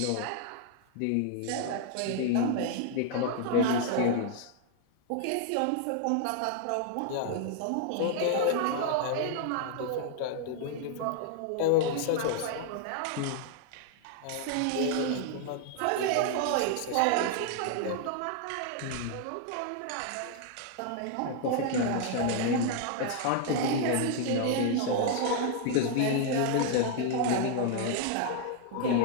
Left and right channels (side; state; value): both; different; correlation 0.00